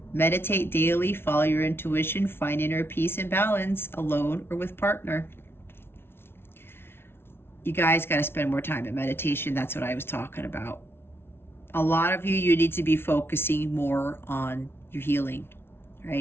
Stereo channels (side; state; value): right; late; 0.12 ms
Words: Meditate daily, follow your intuition, find inner peace and balance, alone or with partner. You guys got to spend more time in meditation. That's what I was talking about. A lot of you need to be focusing more on your healing,